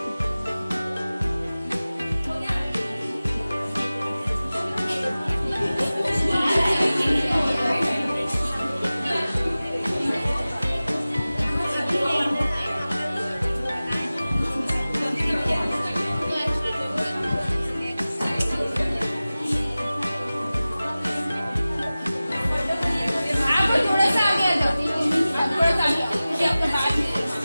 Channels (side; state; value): both; inverted; correlation -0.97